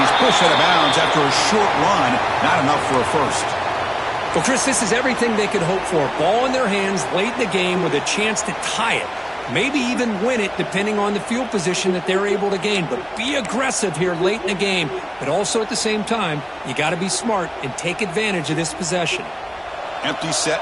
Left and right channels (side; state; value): both; identical; correlation 1.00